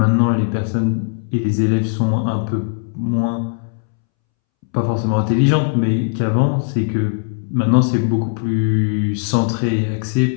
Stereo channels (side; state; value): right; silent; 66 dB below the other